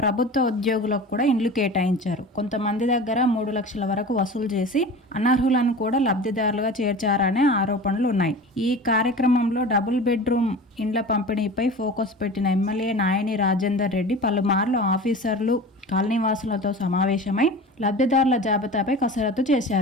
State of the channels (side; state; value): both; normal; correlation 0.35